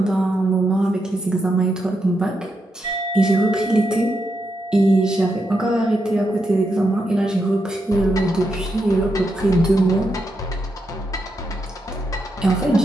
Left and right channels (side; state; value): both; normal; correlation 0.83